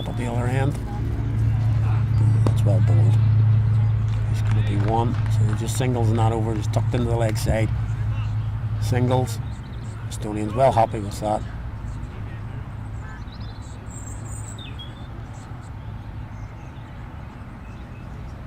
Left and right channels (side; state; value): both; identical; correlation 1.00